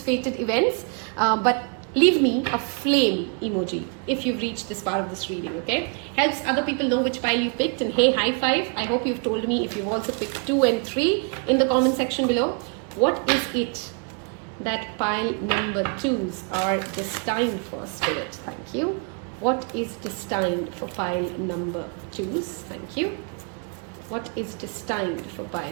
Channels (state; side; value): quieter; left; 37.6 dB